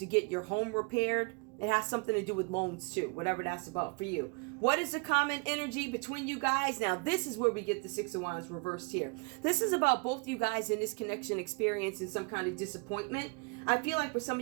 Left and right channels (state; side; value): quieter; left; 32.2 dB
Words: get your home repaired. It has something to do with loans too, whatever that's about for you. What is the common energy between you guys? Now, this is where we get the Six of Wands reversed here. This is about both you guys in this connection experiencing some kind of disappointment. I feel like for some